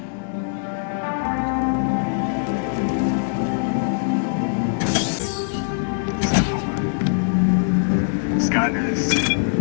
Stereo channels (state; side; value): silent; right; digital silence